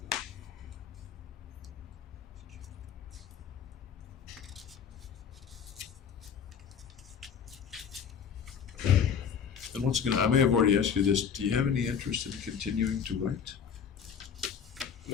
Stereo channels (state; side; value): quieter; right; 7.4 dB